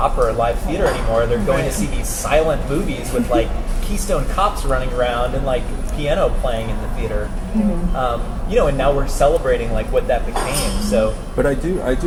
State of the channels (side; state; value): both; identical; correlation 1.00